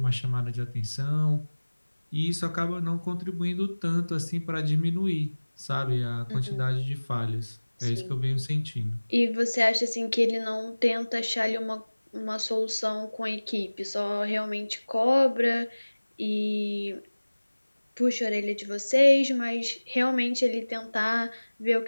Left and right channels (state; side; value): inverted; both; correlation -1.00